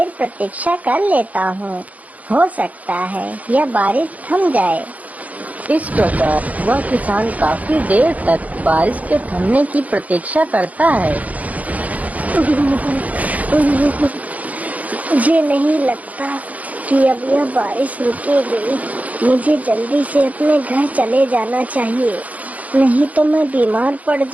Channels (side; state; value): left; late; 0.073 ms